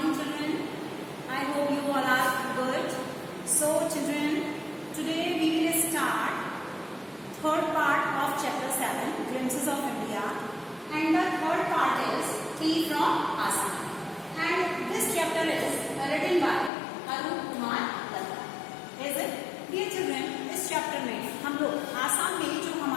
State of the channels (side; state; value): right; drops out; at 16.7 s